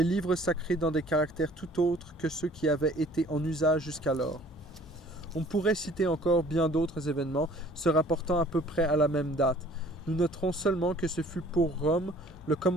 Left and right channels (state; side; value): normal; both; correlation 0.53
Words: livres sacrés dans des caractères tout autres que ceux qui avaient été en usage jusqu'alors. On pourrait citer encore bien d'autres événements se rapportant à peu près à la même date. Nous noterons seulement que ce fut pour Rome le